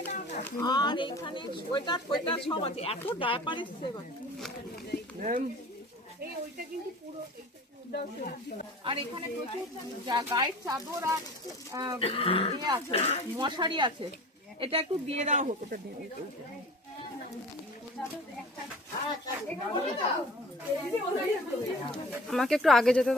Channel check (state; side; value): normal; both; correlation 0.42